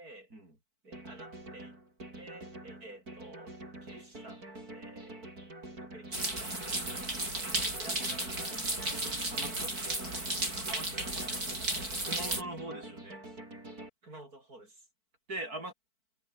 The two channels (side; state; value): left; late; 4.5 ms